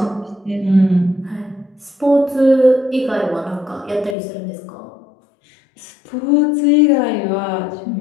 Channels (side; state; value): right; drops out; at 4.2 s